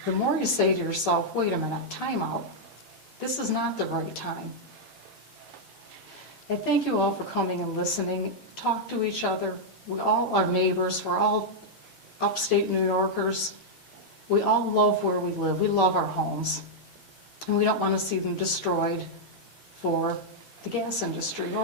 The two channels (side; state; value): left; late; 4.0 ms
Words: the more you say to yourself, wait a minute, time out. This is not the right time. And thank you all for coming and listening. Talk to each other. We all are neighbors. We're all upstate New Yorkers. We all love where we live. We love our homes. And we don't want to see them destroyed for the gas industry